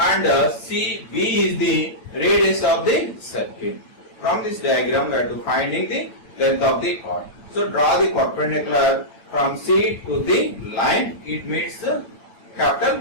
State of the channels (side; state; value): right; late; 8.8 ms